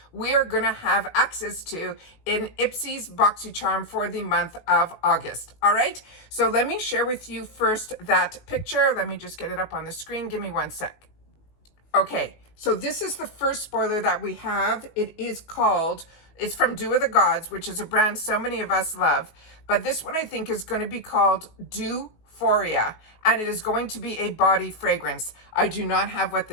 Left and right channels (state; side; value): late; right; 19 ms